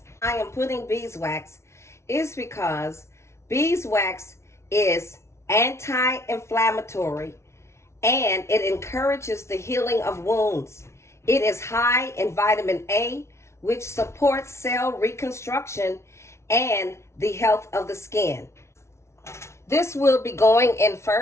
I am putting beeswax is because beeswax is anti-inflammatory and it encourages the healing of wounds. It is high in vitamin A, which supports cell reconstruction and the health of the skin. This will be going in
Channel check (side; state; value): right; late; 0.13 ms